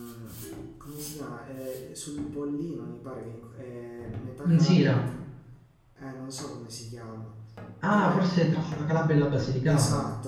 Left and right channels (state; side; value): identical; both; correlation 1.00